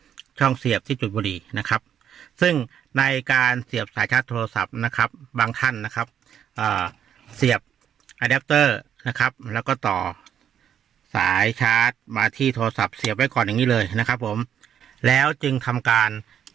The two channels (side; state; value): left; quieter; 9.3 dB